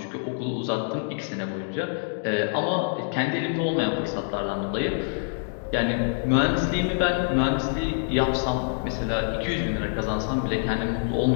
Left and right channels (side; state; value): right; silent; 61 dB below the other